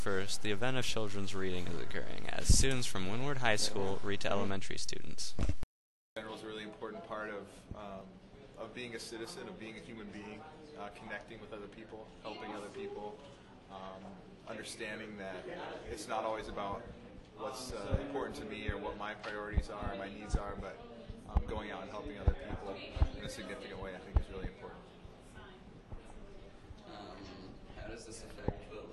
the event of children's reading is occurring as students from Windward High School read to elementary students. General is a really important part of being a citizen, of being a human being, connecting with other people, helping other people, understanding that it's not always about what's important to me or what my priorities are or my needs are, but going out and helping other people in a significant way I think is really important. How does this affect the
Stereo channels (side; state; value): both; identical; correlation 1.00